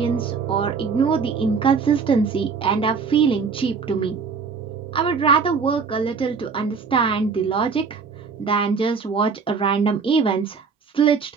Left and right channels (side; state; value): left; quieter; 5.4 dB